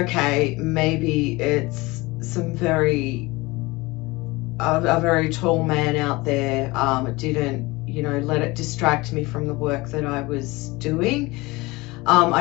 maybe it's a very tall man out there. It didn't, let it distract me from the work that I was doing.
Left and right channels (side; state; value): right; quieter; 22.5 dB